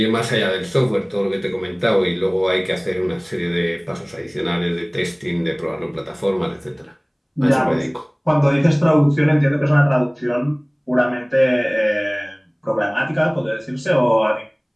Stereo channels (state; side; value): identical; both; correlation 1.00